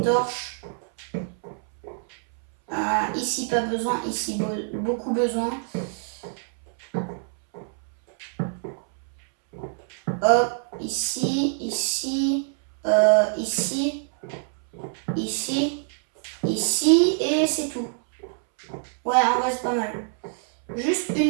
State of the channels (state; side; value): silent; left; 61 dB below the other